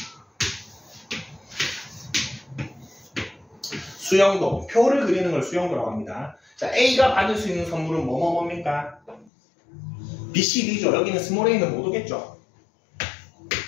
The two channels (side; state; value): right; drops out; at 9.3 s